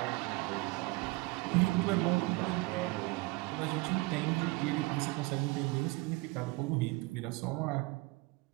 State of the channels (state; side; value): quieter; left; 24.1 dB